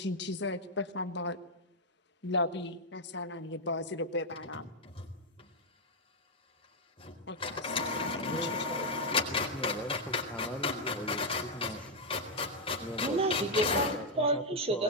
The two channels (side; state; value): both; normal; correlation 0.00